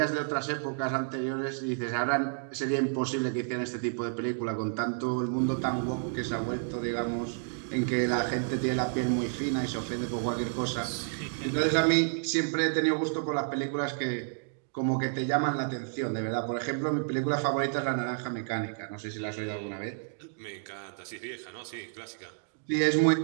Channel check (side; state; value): left; silent; digital silence